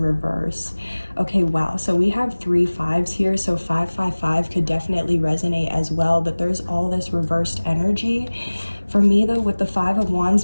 Okay, wow, so we have 3 5s here, so 555 could definitely resonate as well, but there's all this reversed energy. For me though, with the Five of Wands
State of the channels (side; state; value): both; inverted; correlation -1.00